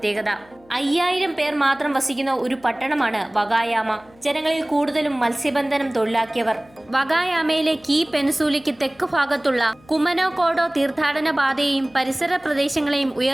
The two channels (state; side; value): noise; left; hum, 28 dB below the sound